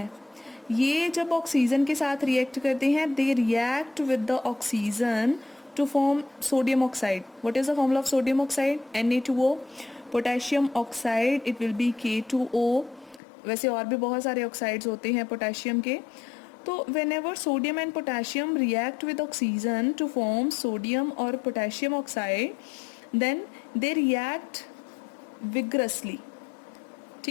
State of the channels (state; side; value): drops out; right; at 13.2 s